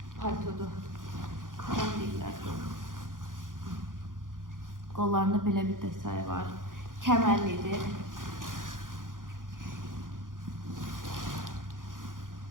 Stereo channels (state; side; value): late; left; 0.89 ms